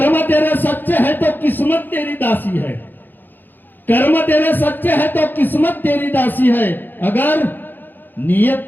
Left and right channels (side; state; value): right; late; 0.090 ms